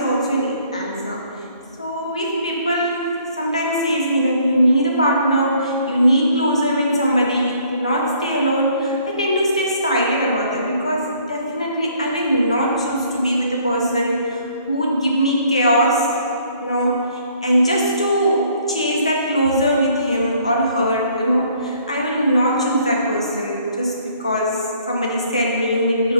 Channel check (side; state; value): both; inverted; correlation -0.62